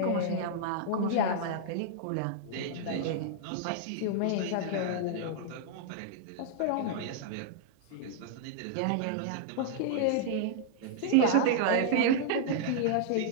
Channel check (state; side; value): different; both; correlation -0.01